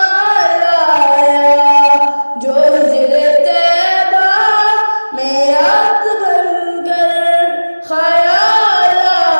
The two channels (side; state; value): both; inverted; correlation -1.00